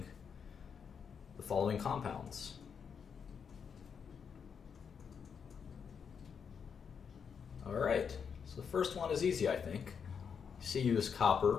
compounds. All right, so the first one is easy, I think. Cu is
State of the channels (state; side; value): quieter; right; 6.7 dB